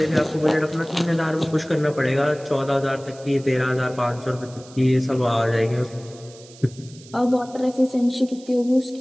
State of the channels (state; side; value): noise; right; hiss, 22 dB below the sound